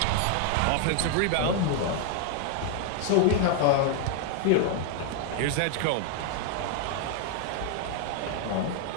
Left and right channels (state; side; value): different; both; correlation 0.00